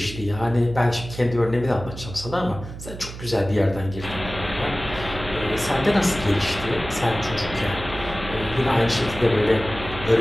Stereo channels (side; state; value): right; noise; hum, 12 dB below the sound